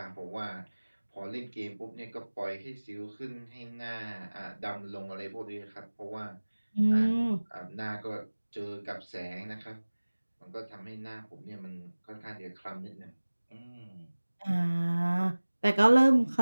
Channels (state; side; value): inverted; both; correlation -1.00